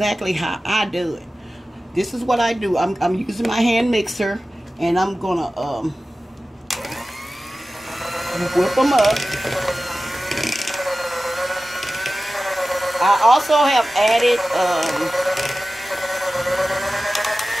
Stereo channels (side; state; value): both; normal; correlation 0.95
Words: how I do it. This is what I do. I'm using my hand mixer, and I'm gonna whip them up. I also have added